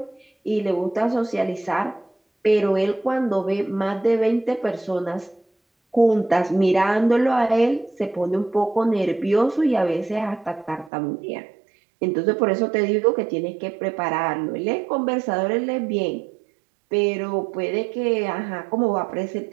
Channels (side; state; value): left; drops out; at 10.9 s